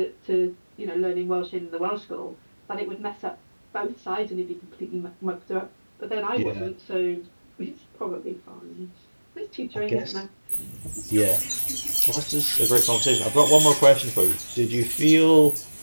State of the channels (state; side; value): inverted; both; correlation -1.00